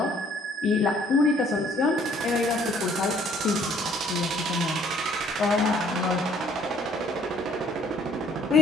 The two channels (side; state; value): both; normal; correlation 0.61